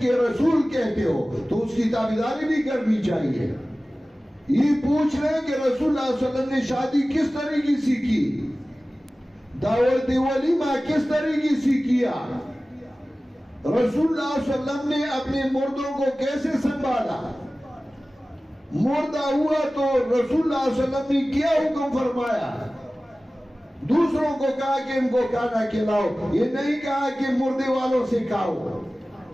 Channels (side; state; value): both; normal; correlation 0.97